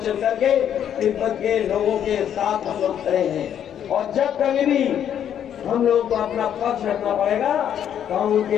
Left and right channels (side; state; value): right; quieter; 9.5 dB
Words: चल करके तिब्बत के लोगों के साथ हम लोग खड़े हैं। और जब कभी भी हम लोग को अपना पक्ष रखना पड़ेगा तो हम उनके